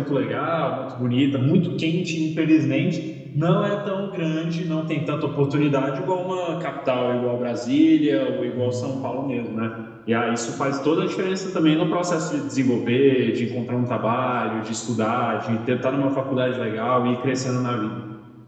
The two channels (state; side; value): identical; both; correlation 1.00